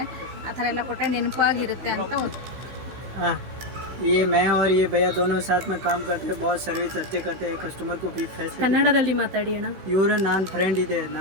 ಆ ಥರ ಎಲ್ಲ ಕೊಟ್ಟರೆ ನೆನಪಾಗಿರುತ್ತೆ ಅಂತ ये मैं और ये भैया दोनों साथ में काम करते हैं, बहुत सर्विस अच्छे करते हैं, कस्टमर को भी फैसिलिटी। ಕನ್ನಡದಲ್ಲಿ ಮಾತಾಡಿ ಅಣ್ಣ. ಇವರು ನಾನು ಫ್ರೆಂಡ್ ಇದೆ,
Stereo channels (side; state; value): left; late; 16 ms